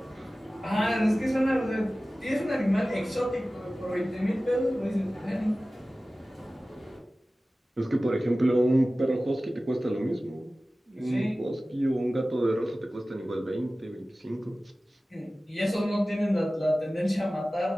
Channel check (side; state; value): both; normal; correlation 0.96